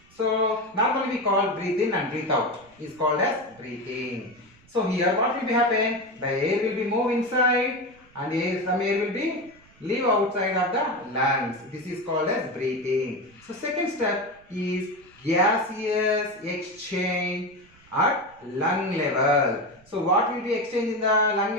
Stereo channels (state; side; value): noise; right; rumble, 29 dB below the sound